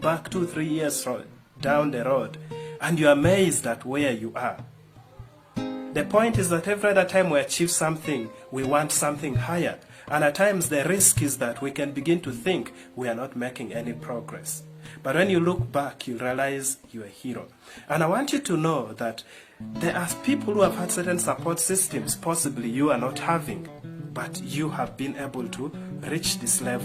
2-3 years down the road and you're amazed at where you are. The point is that every other time we achieve something, we want something higher. And at times the risk is that we can begin to think we are not making any progress. But when you look back, you realize you're a hero. And I want you to know that there are people who have had certain support systems, possibly you are not having, but you have been able to reach this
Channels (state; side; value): identical; both; correlation 1.00